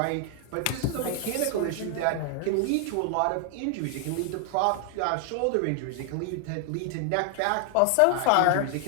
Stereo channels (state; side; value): different; both; correlation 0.00